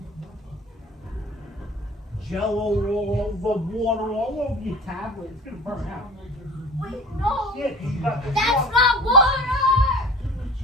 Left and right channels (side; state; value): both; normal; correlation 0.40